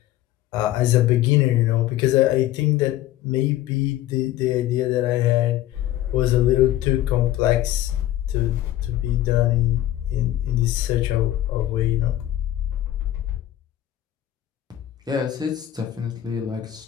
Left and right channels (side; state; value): right; quieter; 13.7 dB